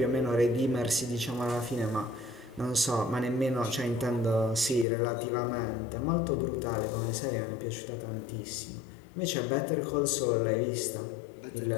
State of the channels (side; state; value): right; drops out; at 4.9 s